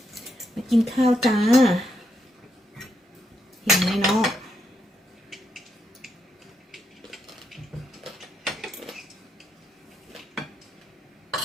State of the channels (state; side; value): normal; both; correlation 0.80